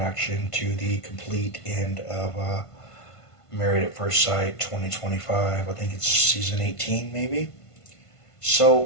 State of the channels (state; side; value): late; right; 1.5 ms